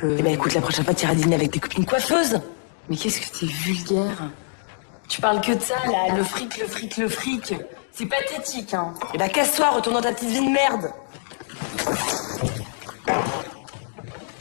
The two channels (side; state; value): right; silent; digital silence